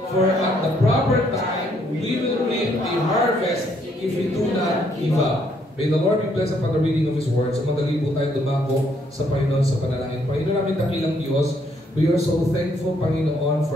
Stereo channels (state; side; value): normal; both; correlation 0.70